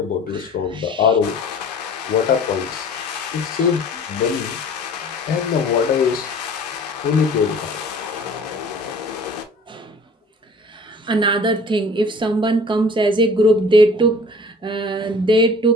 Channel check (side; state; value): both; normal; correlation 0.46